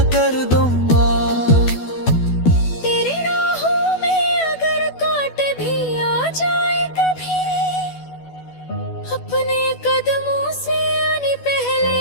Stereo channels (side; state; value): right; late; 12 ms